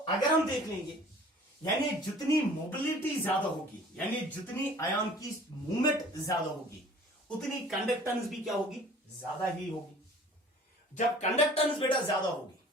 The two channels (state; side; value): normal; both; correlation 0.49